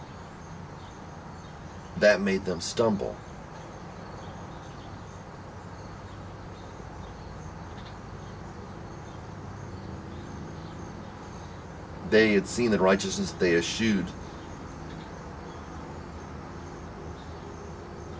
that made them stumble. They had seen the righteousness they eschewed,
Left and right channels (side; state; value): both; identical; correlation 1.00